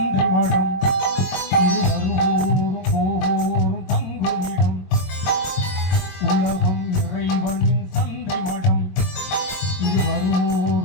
மடம், இது வருவோரும் போவோரும் தங்குமிடம். உலகம் இறைவனின் சந்தை மடம், இது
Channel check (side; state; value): right; late; 22 ms